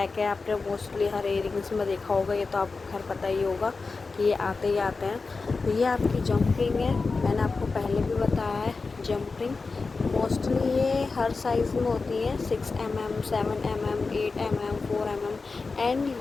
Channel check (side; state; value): right; quieter; 4.2 dB